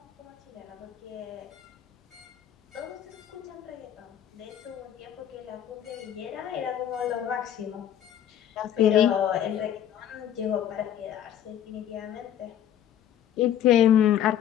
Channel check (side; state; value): right; quieter; 10.5 dB